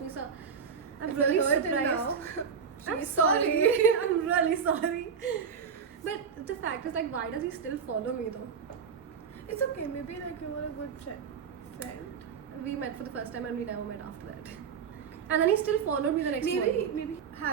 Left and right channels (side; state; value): left; quieter; 6.6 dB